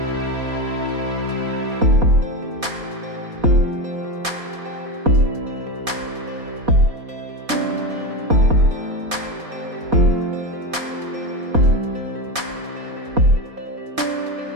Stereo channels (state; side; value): late; left; 4.2 ms